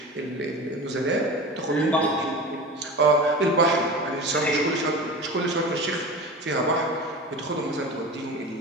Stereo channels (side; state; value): both; normal; correlation 0.32